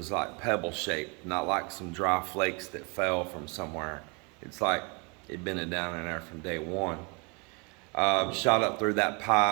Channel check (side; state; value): left; quieter; 31.9 dB